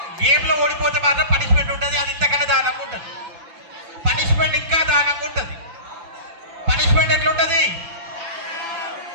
గేమ్లో ఓడిపోతే మాత్రం పనిష్మెంట్ ఉంటుంది, అది ఇంతకన్నా దానంగా ఉంటుంది. పనిష్మెంట్ ఇంకా దానంగా ఉంటుంది. పనిష్మెంట్ ఎట్లుంటుంది?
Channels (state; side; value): late; left; 5.9 ms